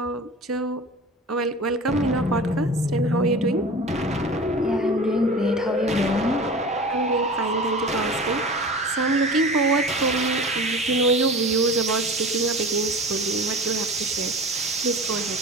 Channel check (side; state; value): both; normal; correlation 0.36